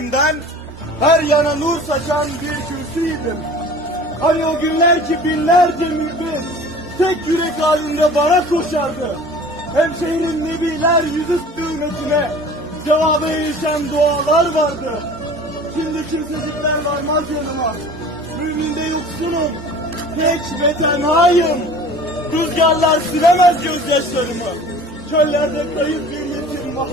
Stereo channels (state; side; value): normal; both; correlation 0.44